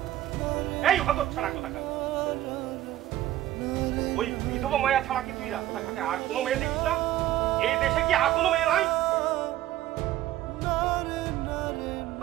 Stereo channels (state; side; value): quieter; left; 14.0 dB